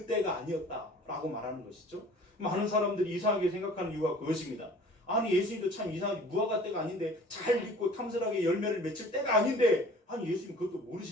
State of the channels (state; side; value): normal; both; correlation 0.48